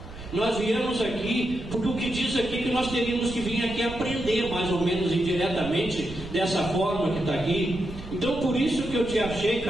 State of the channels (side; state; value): right; noise; rumble, 14 dB below the sound